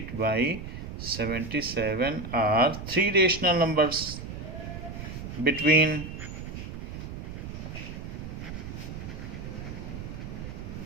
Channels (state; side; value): noise; right; rumble, 8 dB below the sound